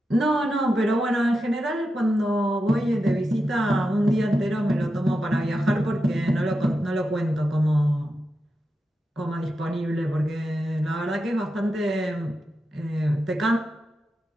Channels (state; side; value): normal; both; correlation 0.89